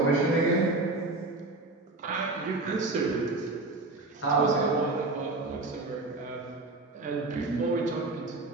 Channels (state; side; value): quieter; left; 3.2 dB